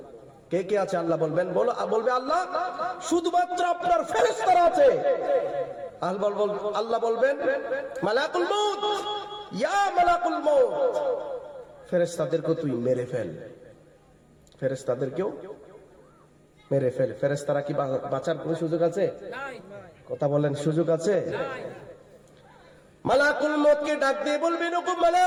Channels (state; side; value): identical; both; correlation 1.00